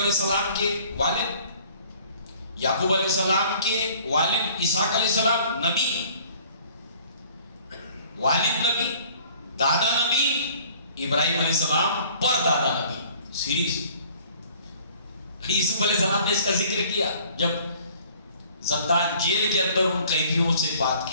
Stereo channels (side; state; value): both; inverted; correlation -0.54